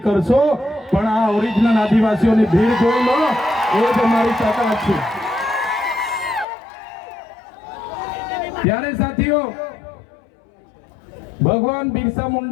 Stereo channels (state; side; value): drops out; right; at 6.5 s